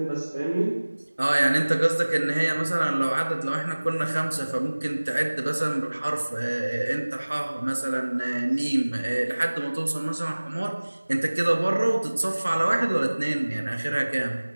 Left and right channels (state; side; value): inverted; both; correlation -1.00